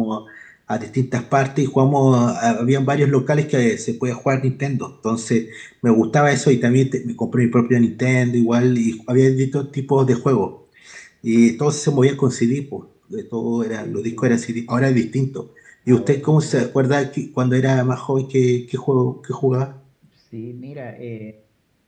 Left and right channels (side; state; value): both; identical; correlation 1.00